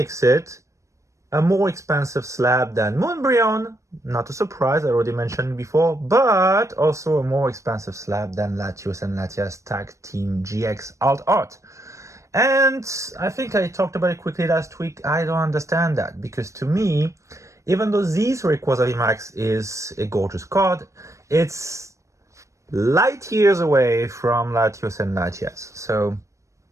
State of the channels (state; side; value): late; left; 0.15 ms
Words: it a more expensive slab than Moonbryon. Not a surprise, I already mentioned before, but also a more expensive slab than Latios and Latias Tag Team GX Alt Art. And I think I talked about it quickly last week. I don't understand that, because to me, even though this Rayquaza VMAX is a gorgeous card, it's light years away from Latios and Latias. So,